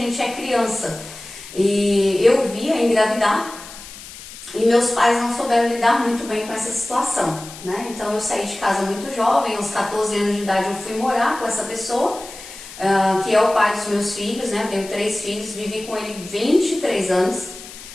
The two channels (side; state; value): left; noise; hiss, 15 dB below the sound